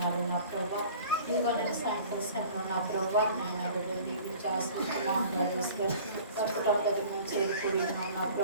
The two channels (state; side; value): inverted; both; correlation -0.46